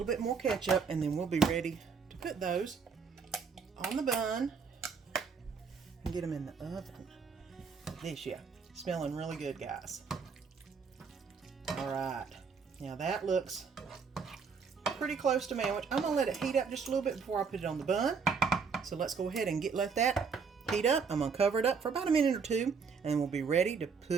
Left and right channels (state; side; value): quieter; left; 5.5 dB